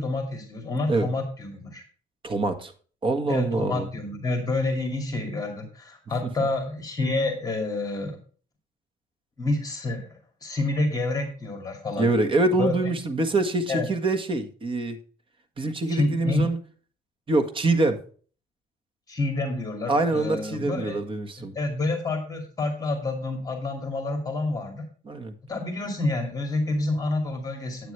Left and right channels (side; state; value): both; normal; correlation 0.68